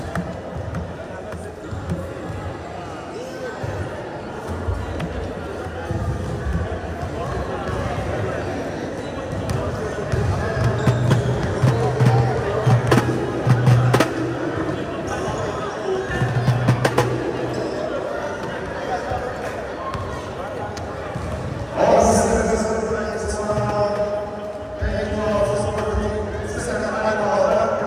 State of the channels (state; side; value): identical; both; correlation 1.00